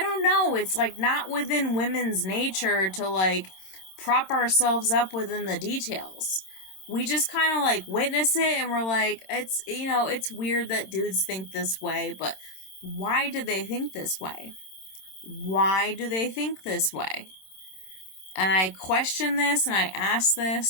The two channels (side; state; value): right; late; 27 ms